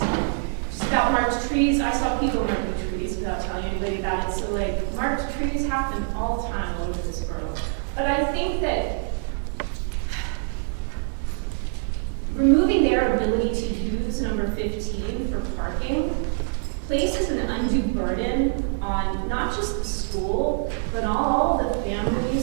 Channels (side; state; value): left; silent; digital silence